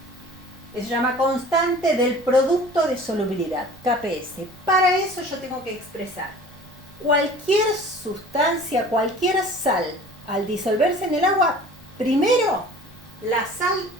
Se llama constante del producto de solubilidad, KPS. Para eso yo tengo que expresar cualquier sustancia, cualquier sal, al disolverse en el agua, primero la sal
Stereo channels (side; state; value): both; normal; correlation 0.45